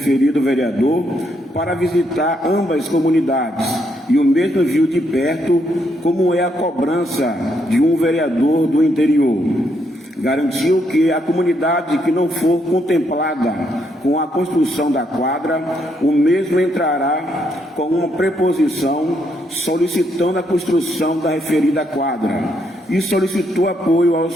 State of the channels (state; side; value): normal; both; correlation 0.75